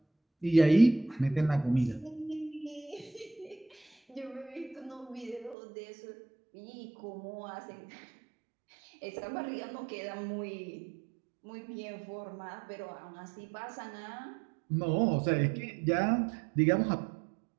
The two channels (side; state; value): left; drops out; at 5.6 s